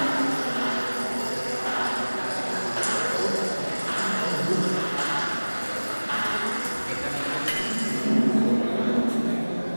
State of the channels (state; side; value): inverted; both; correlation -1.00